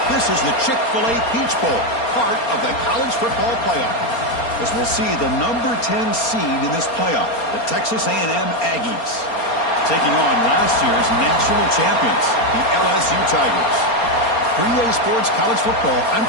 This is the Chick-fil-A Peach Bowl, part of the college football playoff. As we'll see the number 10 seed in this playoff, the Texas A&M Aggies, taking on last year's national champions, the LSU Tigers. 3A Sports College Football, I'm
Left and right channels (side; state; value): right; late; 4.3 ms